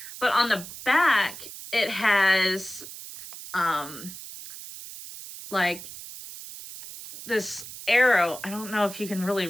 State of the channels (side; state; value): right; noise; hiss, 13 dB below the sound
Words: But on the back, it has like this arrow. I don't know if you can really